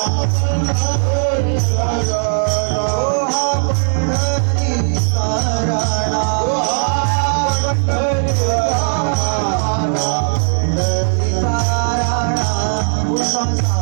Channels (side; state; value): left; silent; digital silence